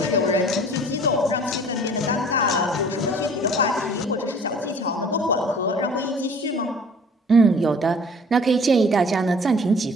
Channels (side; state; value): both; normal; correlation 0.50